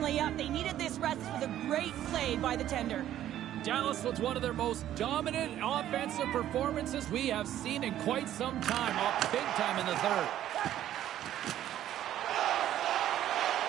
up. They needed this rest for the great play by the tender. Dallas was one of their most dominant offensive performances we have seen in quite some time. Up big time in the third.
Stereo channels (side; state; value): left; quieter; 12.1 dB